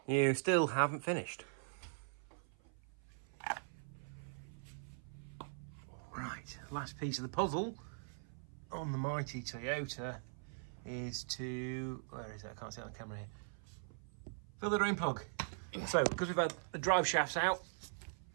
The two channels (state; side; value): silent; left; 50 dB below the other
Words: you still haven't finished. Right, last piece of the puzzle on the mighty Toyota is to, where is it? I can't see it on the camera here. Fill the drain plug. So, because we've had the drive shafts out,